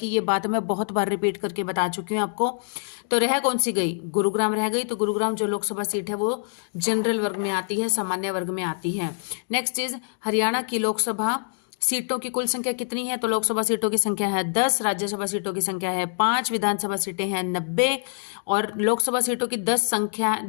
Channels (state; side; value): silent; right; digital silence